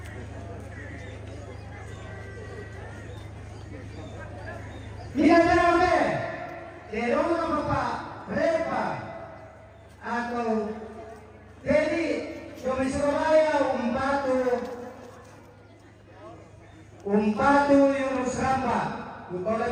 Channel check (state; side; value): identical; both; correlation 1.00